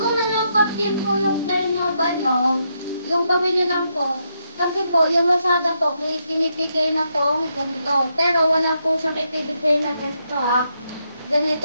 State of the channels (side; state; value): both; inverted; correlation -0.80